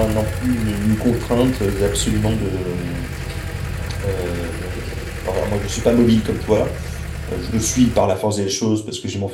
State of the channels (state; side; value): identical; both; correlation 1.00